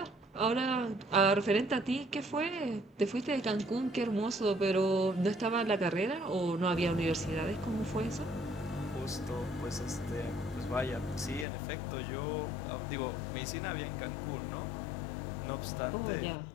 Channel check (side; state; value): right; drops out; at 11.5 s